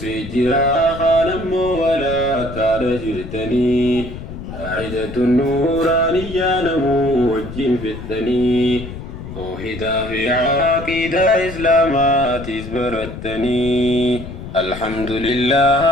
خانم ولا كاد جرتني عيدة النورانية نمو وجين فتني توحيدا في عقيدة إسلامات اسبرتني الحمد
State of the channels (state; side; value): noise; left; rumble, 11 dB below the sound